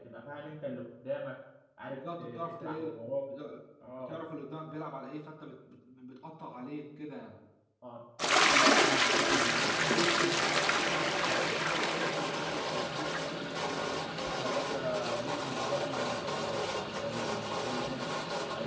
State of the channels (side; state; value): both; identical; correlation 1.00